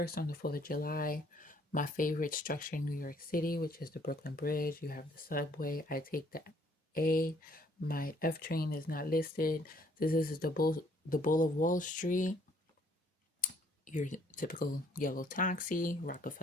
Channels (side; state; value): both; normal; correlation 0.63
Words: on the 4th of July. My favorite structure in New York City, which is the Brooklyn Bridge. You have the subway. I take the A. My F train is not listed. This is the Bull of Wall Street. Your typical yellow taxi,